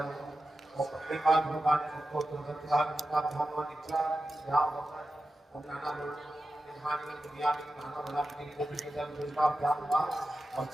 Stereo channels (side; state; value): both; normal; correlation 0.92